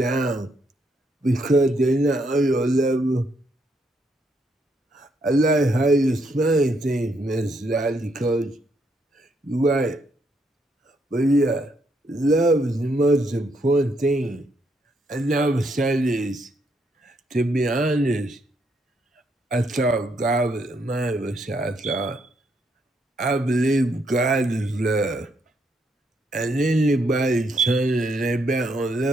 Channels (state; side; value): normal; both; correlation 0.75